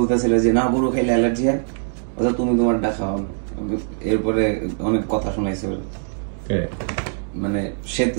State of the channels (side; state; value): left; silent; digital silence